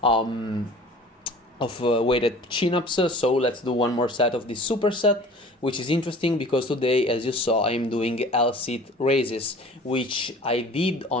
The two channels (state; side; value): normal; both; correlation 0.45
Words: weighted chin-ups, so let's do one more set of this superset, which is interesting because today, as you saw, I'm doing L-sit raises, which I did